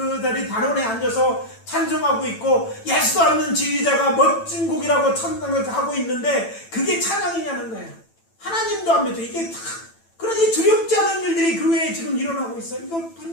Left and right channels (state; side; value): late; right; 9.0 ms